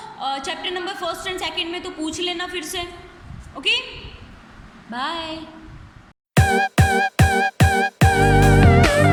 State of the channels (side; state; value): both; identical; correlation 1.00